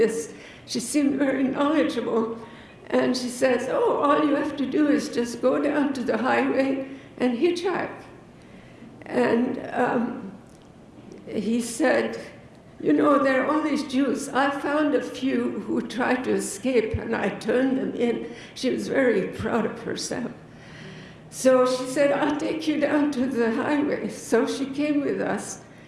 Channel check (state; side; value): identical; both; correlation 1.00